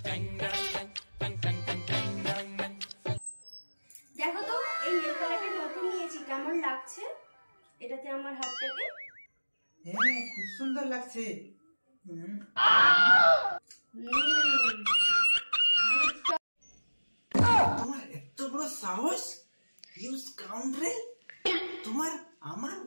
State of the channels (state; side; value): inverted; both; correlation -1.00